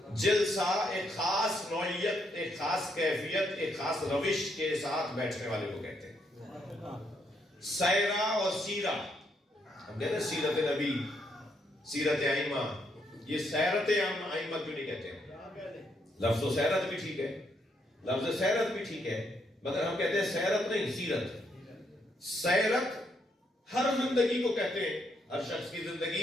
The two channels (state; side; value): normal; both; correlation 0.75